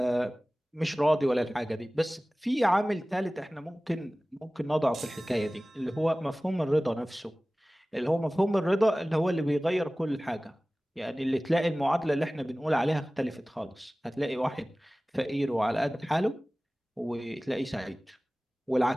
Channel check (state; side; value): normal; both; correlation 0.98